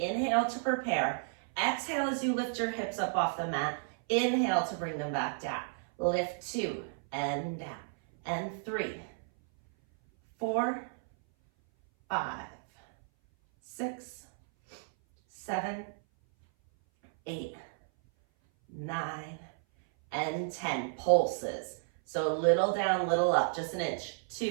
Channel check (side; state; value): left; silent; 56 dB below the other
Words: to prepare. Exhale as you lift your hips up off the mat. Inhale to bring them back down. Lift 2 and down. And 3, 4, 5, 6, 7, 8, 9, and 10. Pulses. So little down, little up, just an inch.